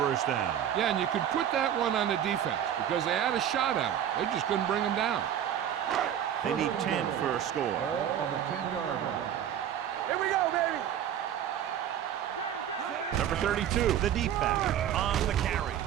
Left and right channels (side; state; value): left; quieter; 10.0 dB